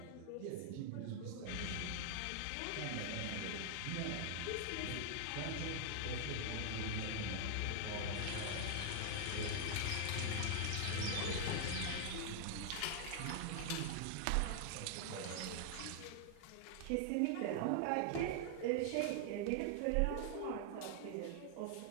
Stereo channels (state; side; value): different; both; correlation 0.00